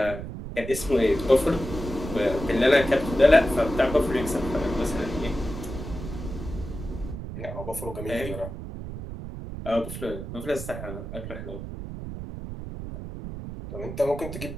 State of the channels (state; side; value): noise; right; rumble, 8 dB below the sound